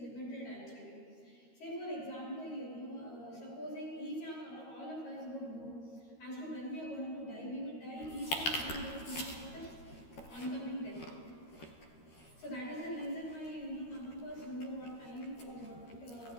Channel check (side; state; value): right; late; 13 ms